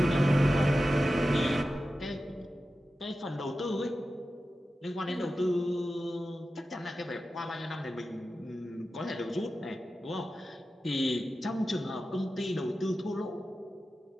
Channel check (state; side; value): normal; both; correlation 0.93